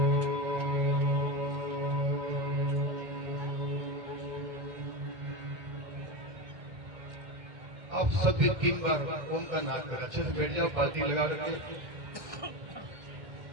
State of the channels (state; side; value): late; left; 2.1 ms